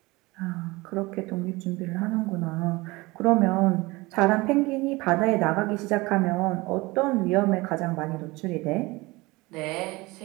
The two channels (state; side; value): quieter; left; 22.5 dB